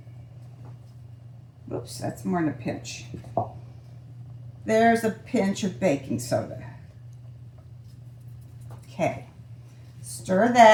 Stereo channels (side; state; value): both; identical; correlation 1.00